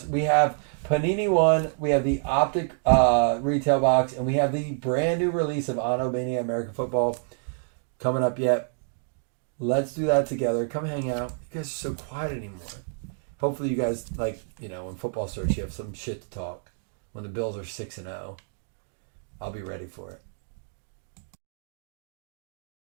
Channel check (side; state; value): left; silent; digital silence